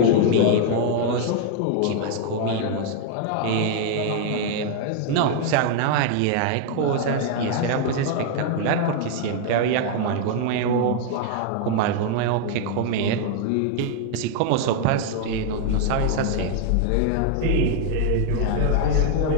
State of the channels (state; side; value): different; both; correlation 0.00